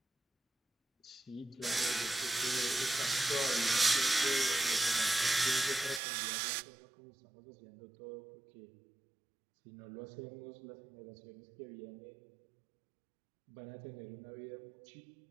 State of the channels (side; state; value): left; drops out; at 6.0 s